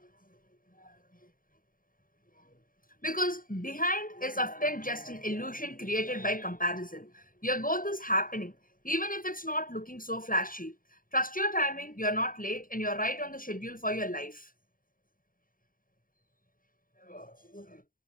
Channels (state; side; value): late; right; 0.40 ms